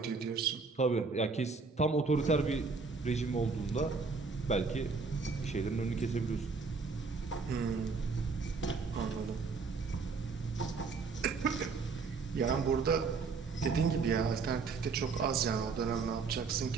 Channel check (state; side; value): quieter; left; 4.6 dB